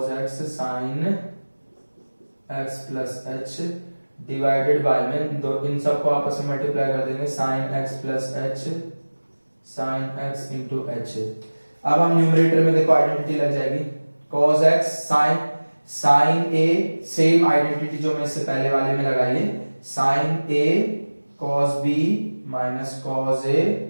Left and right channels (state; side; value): inverted; both; correlation -1.00